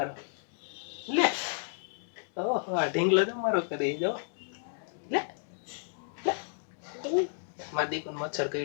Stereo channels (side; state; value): right; silent; digital silence